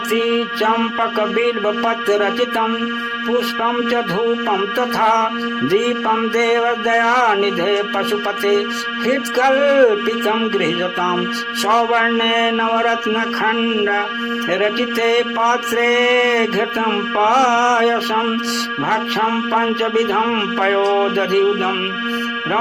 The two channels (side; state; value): both; identical; correlation 1.00